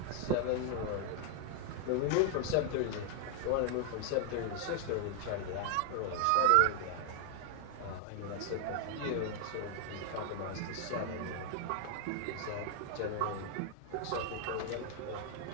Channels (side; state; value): both; different; correlation 0.00